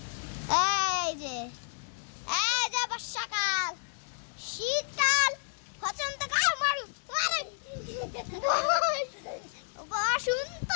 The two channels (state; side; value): silent; right; digital silence